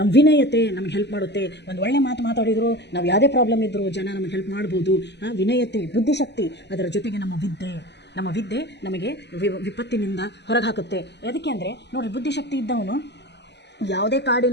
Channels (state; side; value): late; right; 0.50 ms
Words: ವಿನಯತೆ ನಮ್ಗೆ ಹೆಲ್ಪ್ ಮಾಡುತ್ತೆ. ಒಂದು ಒಳ್ಳೆ ಮಾತು ಮಾತಾಡಿದ್ರು, ನಾವು ಯಾವುದೇ ಪ್ರಾಬ್ಲಮ್ ಇದ್ದರೂ ಜನ ನಮಗೆ ಹೆಲ್ಪ್ ಮಾಡ್ಬೋದು. ವಿನಯತೆ, ಬುದ್ಧಿಶಕ್ತಿ, ಅದರ ಜೊತೆಗೆ ನಮ್ಮ ವಿದ್ಯೆ ನಮಗೆ ವಿಪತ್ತಿನಿಂದ ಹೊರಗೆ ಹಾಕುತ್ತೆ. ಅದಕ್ಕೆ ಅಂದರೆ ನೋಡಿರಿ, ಬುದ್ಧಿಶಕ್ತಿ ಇದ್ದವನು ಯಾವುದೇ